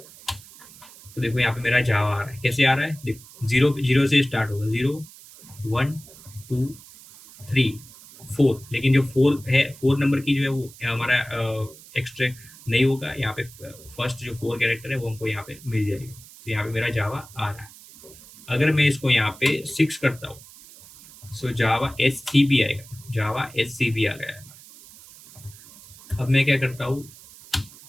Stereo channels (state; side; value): noise; right; hiss, 20 dB below the sound